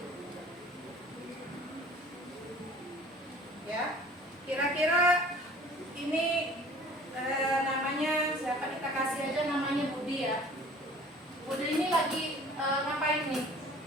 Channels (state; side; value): normal; both; correlation 0.48